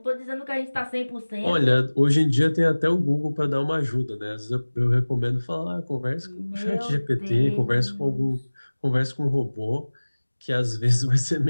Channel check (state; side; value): inverted; both; correlation -1.00